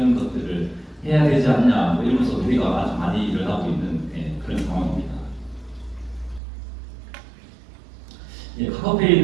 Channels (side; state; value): left; drops out; at 6.4 s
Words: 것들을 해야 되지 않냐 뭐 이러면서 우리가 아주 많이 일어나고 있는 그런 상황입니다.